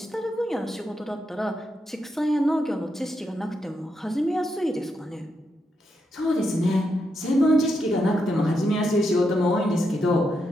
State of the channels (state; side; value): normal; both; correlation 0.82